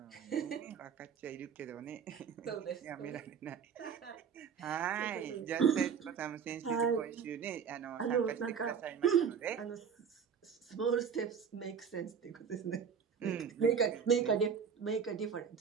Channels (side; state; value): left; quieter; 6.9 dB